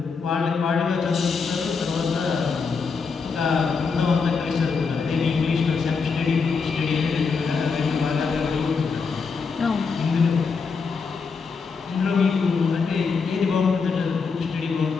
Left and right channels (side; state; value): right; quieter; 5.1 dB